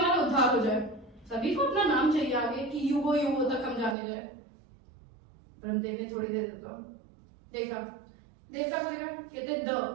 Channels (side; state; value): left; drops out; at 4.0 s